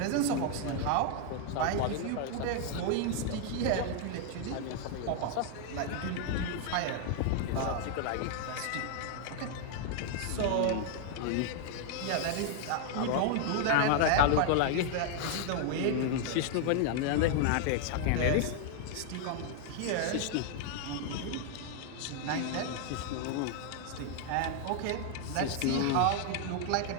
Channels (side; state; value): both; different; correlation 0.00